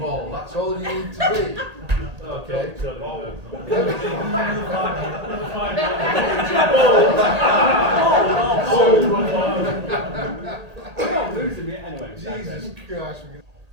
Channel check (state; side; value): late; left; 1.8 ms